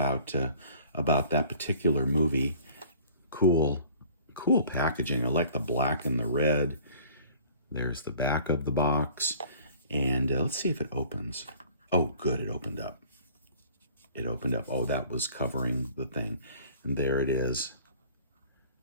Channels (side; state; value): both; inverted; correlation -0.50